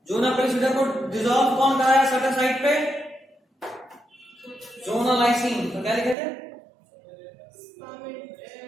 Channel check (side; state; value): left; drops out; at 6.2 s